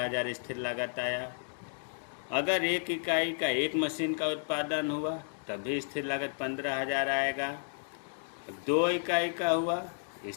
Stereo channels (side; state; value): right; silent; digital silence